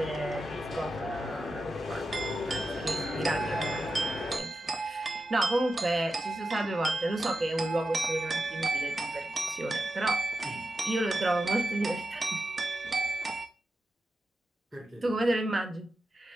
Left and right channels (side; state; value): both; normal; correlation 0.90